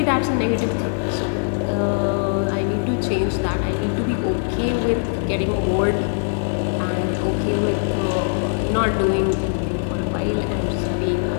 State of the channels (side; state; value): right; silent; digital silence